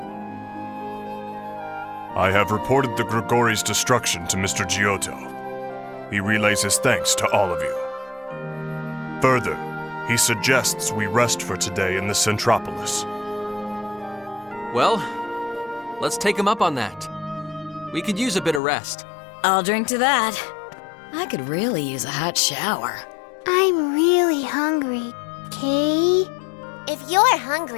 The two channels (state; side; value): drops out; right; at 18.6 s